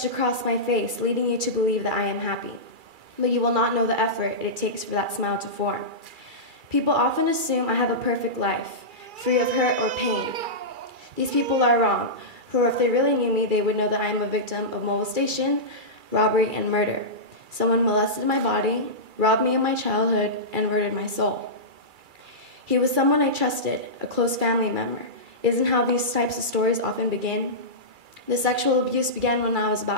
across my face, leading you to believe that I am happy. But you will not know the effort it takes for that smile to form. People often assume I have a perfect life, free of hurt or pain. These people are wrong, for if they really knew me, they would know that I am a victim of molestation, robbery, and murder. Someone molested my body, robbed me of my childhood, and murdered my soul. He was someone I trusted, a close family member. Isn't how these types of stories often begin? The sexual abuse began when I was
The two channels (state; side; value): late; left; 2.3 ms